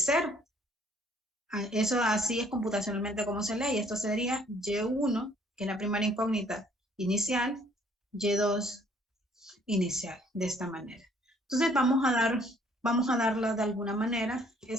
Eso así es computacionalmente como se lee, y esto sería Y1, que es la primera incógnita inicial, Y2 inicial, de esta manera. Entonces vamos a darla de alguna manera.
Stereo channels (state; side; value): normal; both; correlation 0.62